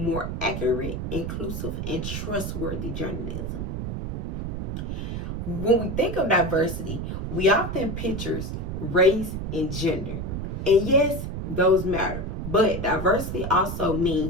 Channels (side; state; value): right; noise; rumble, 4 dB below the sound